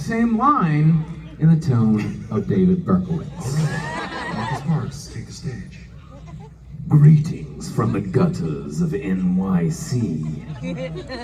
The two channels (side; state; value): both; identical; correlation 1.00